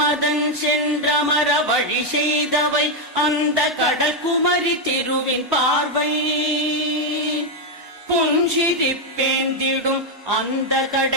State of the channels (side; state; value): both; normal; correlation 0.02